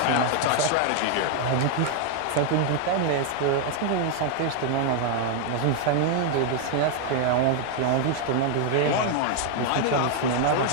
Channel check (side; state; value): both; different; correlation 0.00